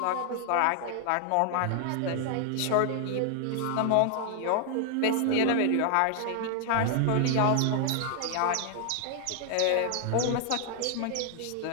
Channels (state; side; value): different; both; correlation 0.00